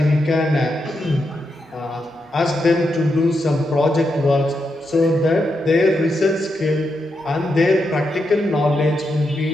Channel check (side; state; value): both; normal; correlation 0.84